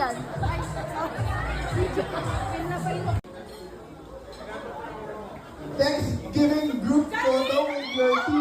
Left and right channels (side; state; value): both; identical; correlation 1.00